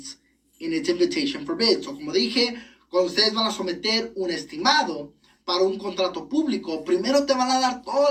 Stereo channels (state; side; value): identical; both; correlation 1.00